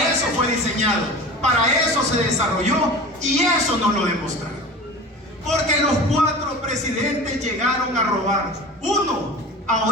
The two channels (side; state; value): both; normal; correlation 0.35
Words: eso fue diseñado. Para eso se desarrolló. Y eso nos lo demostraron. Porque los 4 presidentes llegaron a robar. Uno,